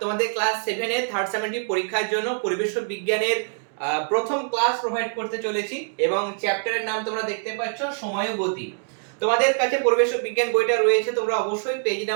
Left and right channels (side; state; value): left; silent; 59 dB below the other